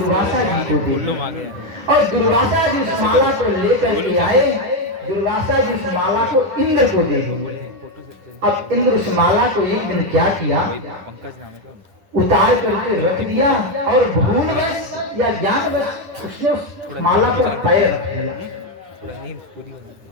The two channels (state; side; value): late; left; 10 ms